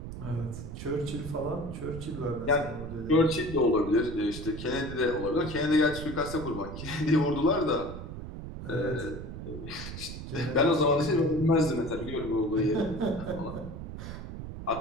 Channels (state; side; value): noise; right; rumble, 9 dB below the sound